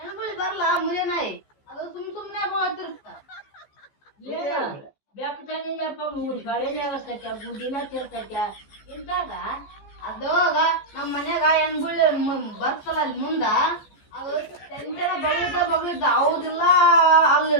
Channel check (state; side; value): late; right; 14 ms